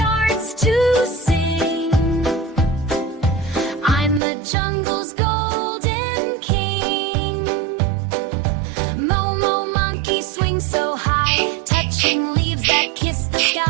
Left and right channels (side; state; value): left; drops out; at 4.2 s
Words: to sing. I'm the jungle's golden king. Momo monkey swings so high, touching leaves that kiss the